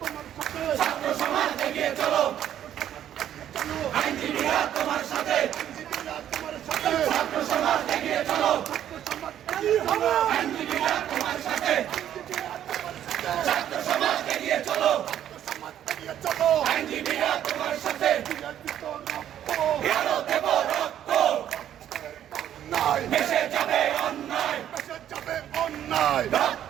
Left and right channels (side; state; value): left; quieter; 10.8 dB